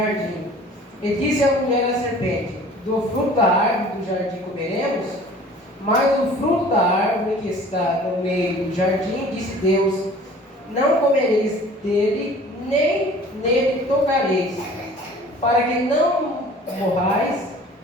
E disse a mulher à serpente: do fruto da árvore do jardim comeremos, mas o fruto da árvore que está no meio do jardim, disse Deus: não comereis dele, nem nele tocareis, para que não morrais.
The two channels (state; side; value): normal; both; correlation 0.48